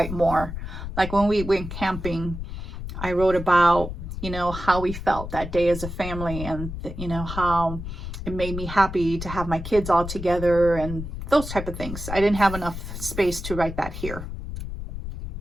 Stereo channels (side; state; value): left; noise; rumble, 8 dB below the sound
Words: more. Like when we went camping, I wrote about, you know, how we felt that day as a family, and you know, how it made me happy to have my kids all together and those type of things. I didn't have enough space to write that here.